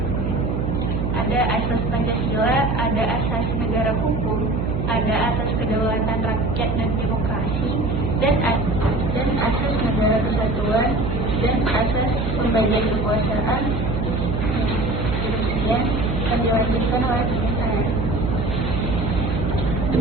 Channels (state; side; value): noise; right; hum, 1 dB below the sound